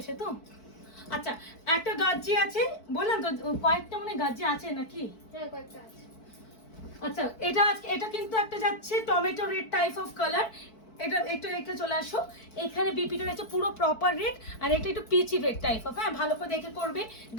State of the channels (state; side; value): late; right; 4.5 ms